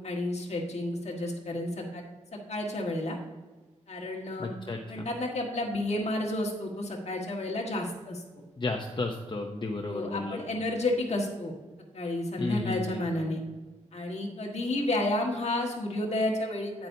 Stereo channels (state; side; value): normal; both; correlation 0.65